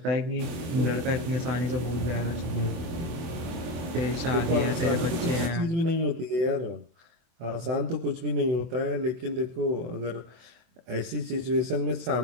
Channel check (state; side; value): late; left; 24 ms